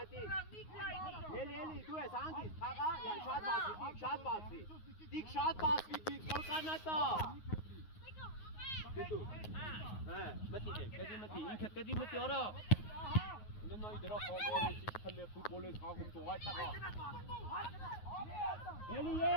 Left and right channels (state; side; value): late; right; 9.5 ms